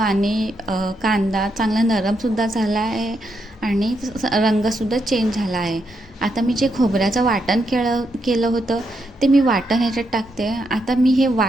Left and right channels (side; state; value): both; normal; correlation 0.80